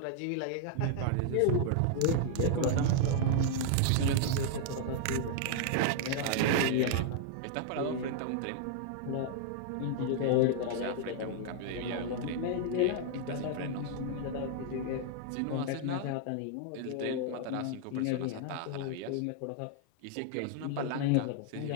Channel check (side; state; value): both; different; correlation 0.00